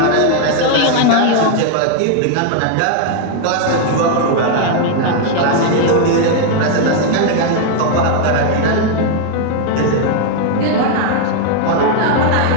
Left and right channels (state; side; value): different; both; correlation 0.00